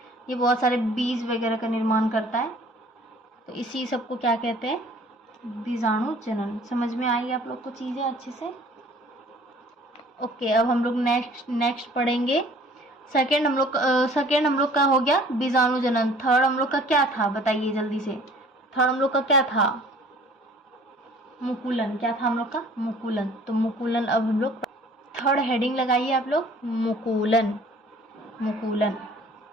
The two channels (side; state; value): both; normal; correlation 0.51